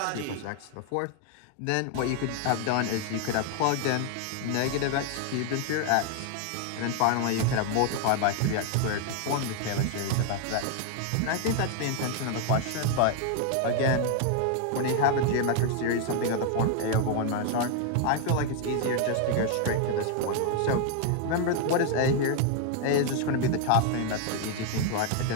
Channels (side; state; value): both; different; correlation 0.00